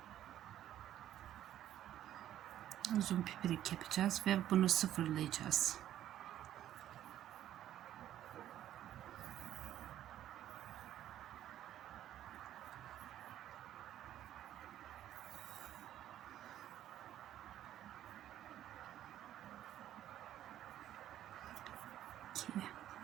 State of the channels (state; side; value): quieter; left; 12.0 dB